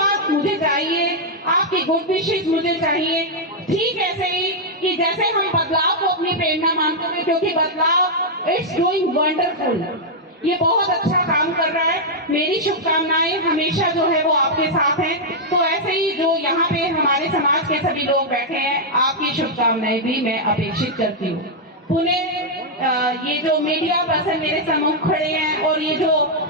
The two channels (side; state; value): both; normal; correlation -0.04